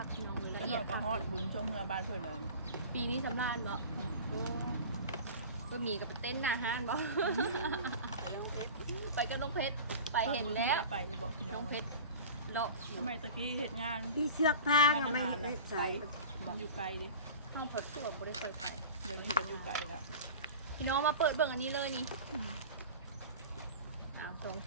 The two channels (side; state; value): both; inverted; correlation -0.37